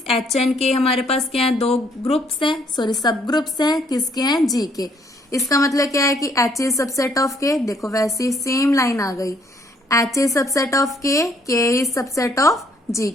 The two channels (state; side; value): normal; both; correlation 0.66